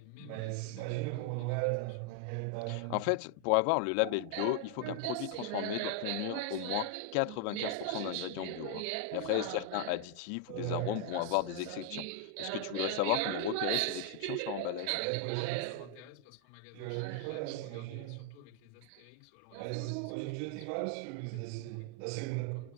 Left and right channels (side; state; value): both; different; correlation 0.00